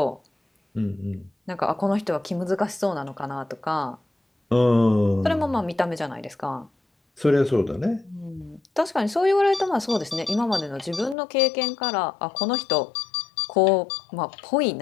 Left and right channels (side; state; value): right; drops out; at 11.2 s